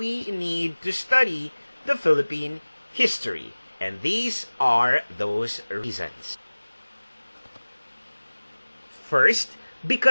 need to study the Philippine history. And these are those reasons. First,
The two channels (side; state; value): both; inverted; correlation -1.00